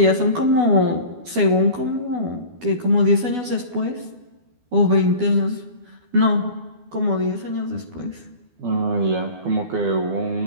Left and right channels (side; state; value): left; late; 12 ms